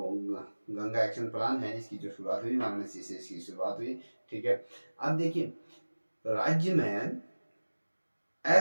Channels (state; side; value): inverted; both; correlation -1.00